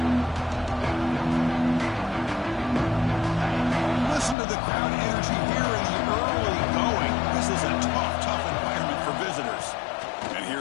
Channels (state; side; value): drops out; right; at 4.4 s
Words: Listen to the crowd energy here in the early going. This is a tough environment for visitors. And